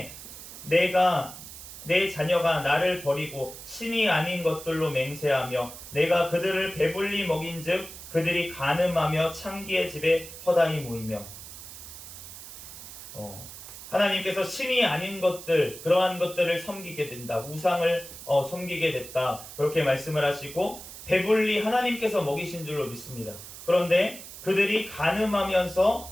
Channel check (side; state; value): right; noise; hiss, 13 dB below the sound